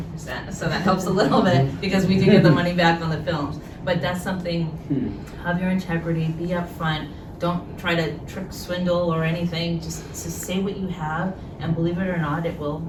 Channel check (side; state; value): both; identical; correlation 1.00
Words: So that helps a little bit because we do get the money back on the films. But that's something, have your integrity, be upfront, don't try to trick, swindle, or anything. Just say what you have, and believe it or not, it will